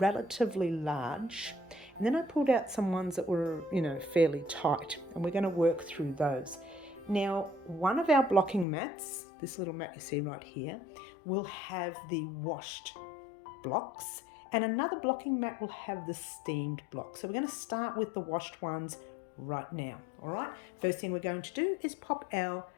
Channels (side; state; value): right; drops out; at 8.7 s